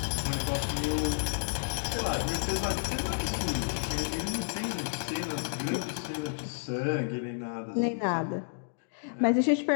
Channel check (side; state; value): right; silent; digital silence